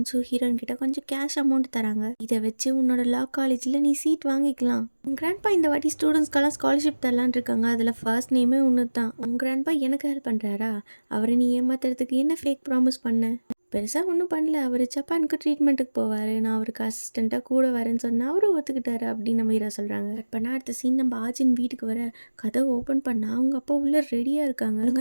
ஹீரோயின் கிட்ட கொஞ்சம் கேஷ் அமௌண்ட் தராங்க. இதை வச்சு உன்னோட லா காலேஜில் நீ சீட் வாங்கிக்கலாம். உங்கள் கிராண்ட்பா இந்த வாட்டி ஸ்டூடெண்ட்ஸ்க்கெல்லாம் ஸ்காலர்ஷிப் தரலான் இருக்காங்க. அதில் ஃபர்ஸ்ட் நேமே ஒன்று தான். உங்கள் கிராண்ட்பா எனக்கு ஹெல்ப் பண்ணுறாரா? அவரை நீ ஏமாத்துறதுக்கு என்ன ஃபேக் ப்ராமிஸ் பண்ண? பெருசாக ஒன்றும் பண்ணல. அவர் ஜப்பானுக்கு ட்ரீட்மெண்ட்டுக்கு போவார். நான் அவருக்கு அசிஸ்டண்ட்டாக கூட வரேன்னு சொன்னால் அவரும் ஒத்துக்கிட்டாரு அப்படின்னு நம்ம ஹீரோ சொல்கிறாங்க. கட் பண்ணால் அடுத்த சீன் நம்ம ஆஜின் வீட்டுக்கு வர கதவை ஓப்பன் பண்ணால் அவங்க அப்பா உள்ளே ரெடியாக இருக்காங்க.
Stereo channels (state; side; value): inverted; both; correlation -1.00